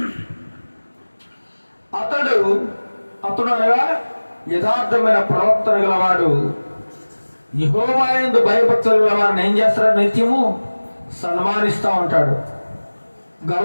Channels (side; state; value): both; inverted; correlation -1.00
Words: అతడు అనగా యథార్థమైన ప్రవర్తన గలవాడు యెహోవా యందు భయభక్తులు గల వారిని ఏం చేస్తాడు? నిత్యము సన్మానిస్తూ ఉంటాడు,